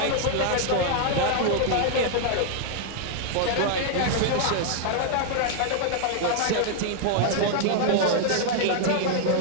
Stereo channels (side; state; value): both; different; correlation 0.00